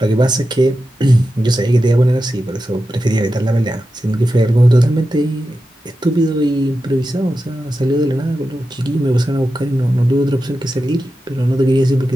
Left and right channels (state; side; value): normal; both; correlation 0.91